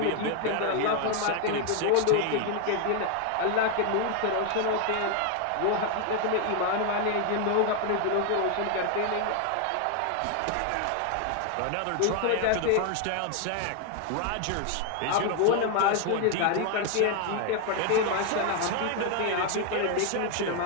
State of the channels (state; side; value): different; both; correlation 0.00